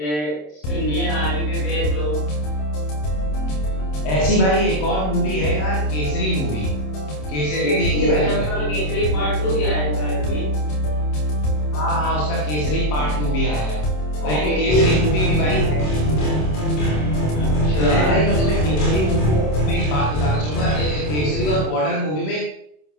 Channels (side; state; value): right; late; 27 ms